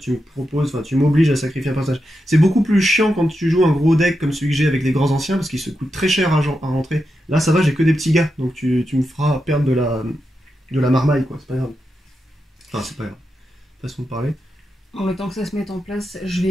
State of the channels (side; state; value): both; normal; correlation 0.87